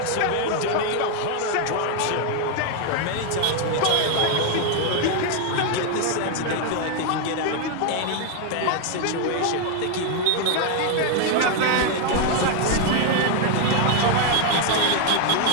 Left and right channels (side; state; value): both; different; correlation 0.01